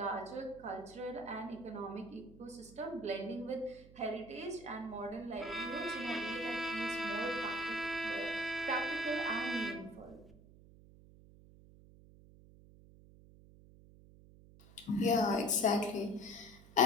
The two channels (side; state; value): right; noise; hum, 21 dB below the sound